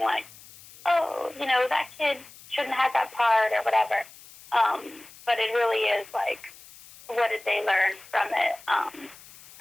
like, oh, that kid shouldn't have that part or whatever. But it really is like, what did they learn from it?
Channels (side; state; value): left; noise; hiss, 21 dB below the sound